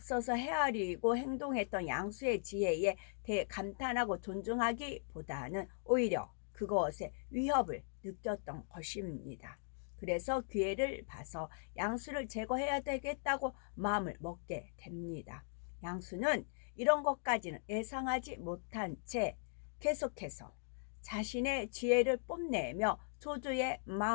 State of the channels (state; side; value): silent; right; digital silence